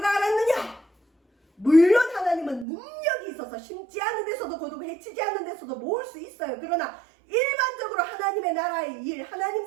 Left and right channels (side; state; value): left; drops out; at 2.7 s